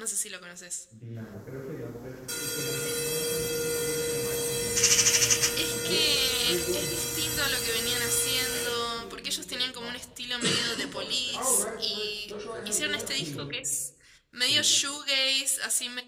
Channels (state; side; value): identical; both; correlation 1.00